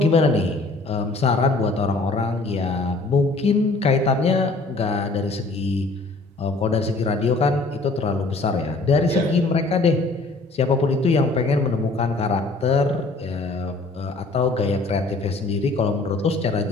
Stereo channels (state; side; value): quieter; right; 3.3 dB